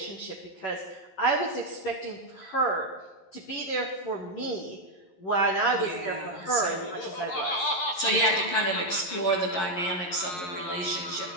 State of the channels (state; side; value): late; right; 11 ms